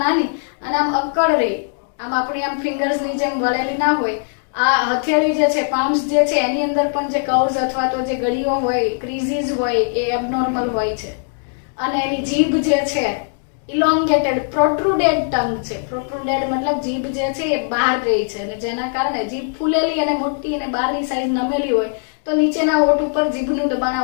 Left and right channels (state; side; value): silent; right; 66 dB below the other